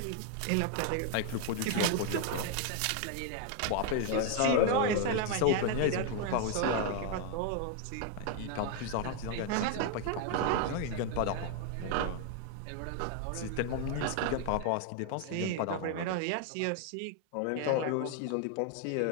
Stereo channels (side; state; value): both; different; correlation 0.00